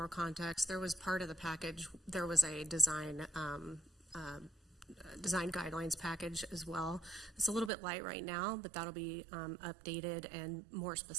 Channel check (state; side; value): drops out; left; at 7.7 s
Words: context, there was part of the package, there was a design guidelines package as well. It's a little bit light right now, but that'll be updated and more